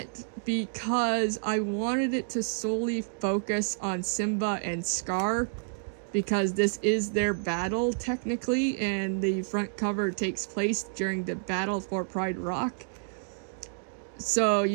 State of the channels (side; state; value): left; silent; digital silence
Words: because I wanted it to solely focus on Simba and Scar, because this is their battle technically, and the front cover takes place during the battle for Pride Rock. So